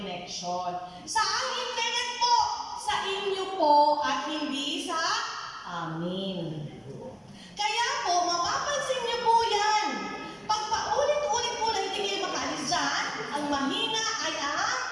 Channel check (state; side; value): identical; both; correlation 1.00